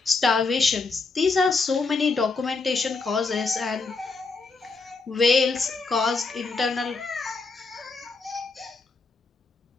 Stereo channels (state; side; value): quieter; right; 4.1 dB